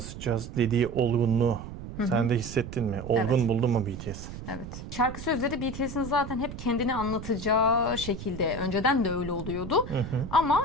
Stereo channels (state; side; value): noise; right; rumble, 10 dB below the sound